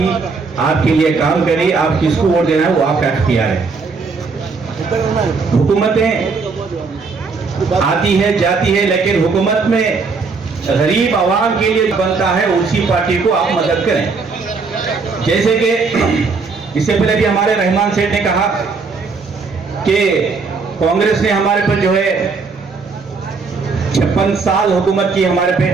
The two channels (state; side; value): quieter; left; 4.5 dB